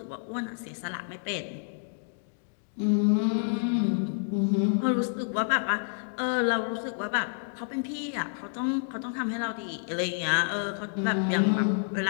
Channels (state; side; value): silent; right; digital silence